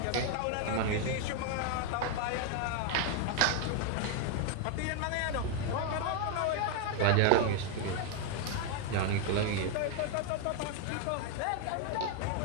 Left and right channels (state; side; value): different; both; correlation 0.00